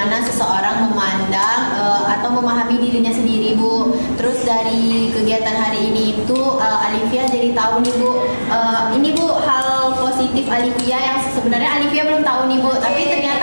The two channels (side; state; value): both; inverted; correlation -1.00